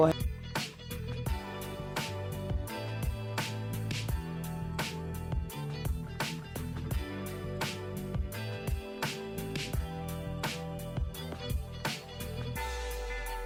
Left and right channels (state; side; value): identical; both; correlation 1.00